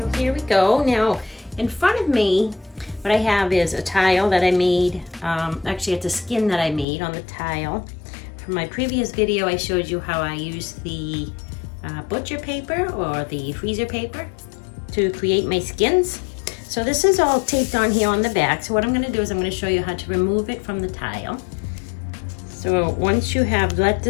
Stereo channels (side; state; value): right; drops out; at 6.9 s